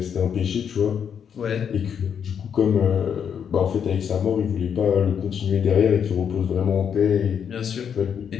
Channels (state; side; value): quieter; right; 7.8 dB